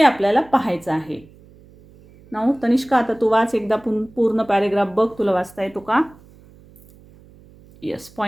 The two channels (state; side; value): noise; right; hum, 25 dB below the sound